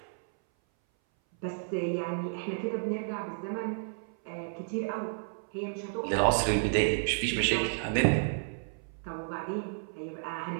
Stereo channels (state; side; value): silent; left; 57 dB below the other